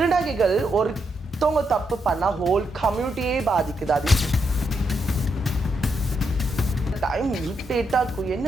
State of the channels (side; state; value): both; normal; correlation 0.81